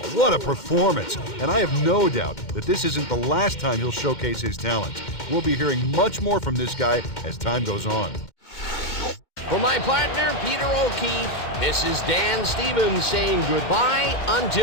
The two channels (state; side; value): late; right; 2.1 ms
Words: What a performance! And I have no doubt that this isn't the last time he'll showcase his talents. We'll be hearing much more from this guy as time goes on. For my partner, Peter O'Keefe, this is Dan Stevens saying goodbye